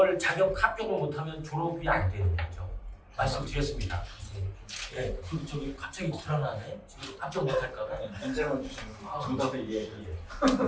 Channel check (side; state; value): both; identical; correlation 1.00